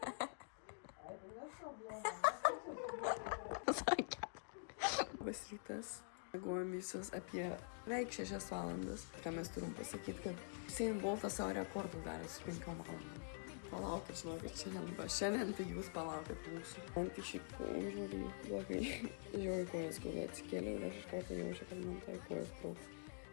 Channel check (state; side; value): silent; right; digital silence